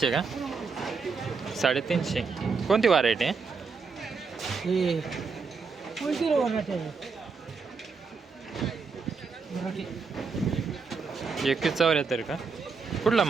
का? 350. कोणती व्हरायटी आहे? 21 का? कुठला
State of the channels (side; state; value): left; quieter; 4.9 dB